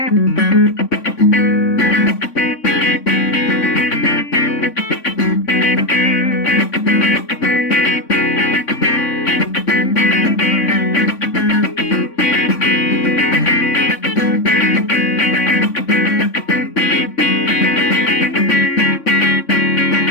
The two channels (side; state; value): right; late; 3.5 ms